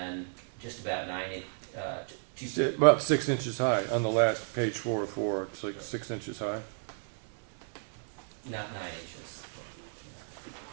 just about 2 feet. About 6 inches high. On the last page 4 of 4, it's like 6 inches high. Not 9 inches.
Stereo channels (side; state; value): left; silent; digital silence